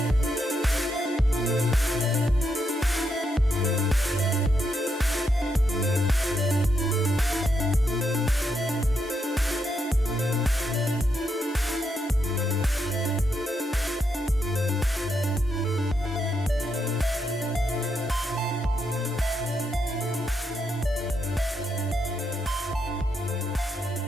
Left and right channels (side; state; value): both; normal; correlation 0.80